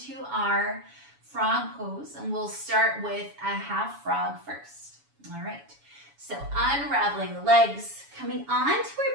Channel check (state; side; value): late; left; 7.1 ms